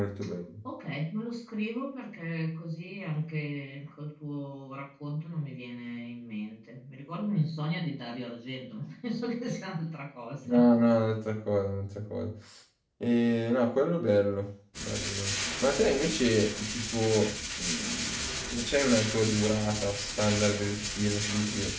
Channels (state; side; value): identical; both; correlation 1.00